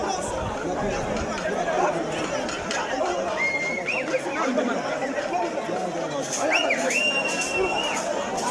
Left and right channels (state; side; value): identical; both; correlation 1.00